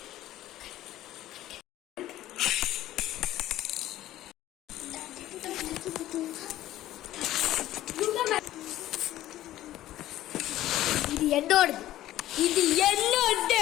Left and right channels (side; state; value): right; quieter; 14.2 dB